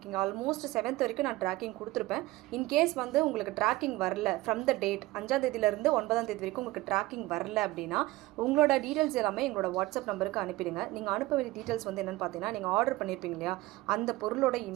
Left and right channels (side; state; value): left; quieter; 18.8 dB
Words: ஆல்மோஸ்ட் 7th வரைக்கும் நான் ட்ராக்கிங் கொடுத்துருப்பேன். இன்கேஸ் வந்து உங்களுக்கு ட்ராக்கிங் வரல ஃப்ரம் த டேட் 5ஆம் தேதியிலேருந்து 9ஆம் தேதி வரைக்கும் உங்களுக்கு ட்ராக்கிங் வரல அப்படின்னா உங்களோட டீட்டெயில்ஸ் எல்லாமே எங்களோட வாட்ஸ்அப் நம்பருக்கு அனுப்பிடுங்க. நீங்கள் அனுப்ப வேண்டிய டீட்டெயில்ஸ் வந்து என்னென்னு பார்த்தீங்கன்னா, நீங்கள் ஆர்டர் பண்ணியிருப்பீங்க இல்லையா, அந்த பொருளோட